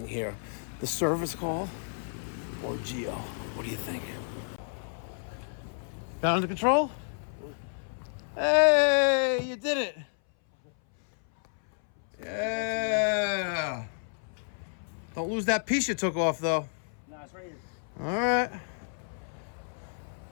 here. The service call or Gio? What do you think? Got it under control? Hey, you did it. Yeah. Don't lose that piece you took off though. Nah, it's right here. All right.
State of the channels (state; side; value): silent; right; 57 dB below the other